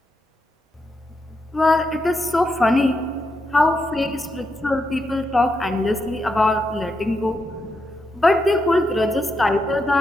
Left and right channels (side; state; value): both; normal; correlation 0.83